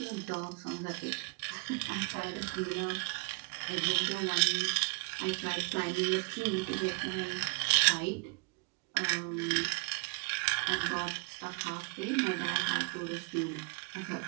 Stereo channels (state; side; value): quieter; left; 31.9 dB